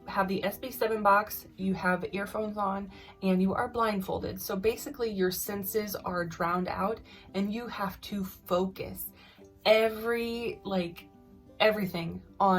have the SB7 box, you have earphones on, and you are blindfolded. So basically your senses are drowned out, and you have to focus everything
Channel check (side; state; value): both; identical; correlation 1.00